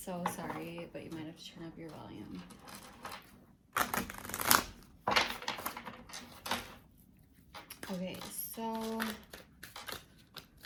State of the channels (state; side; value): identical; both; correlation 1.00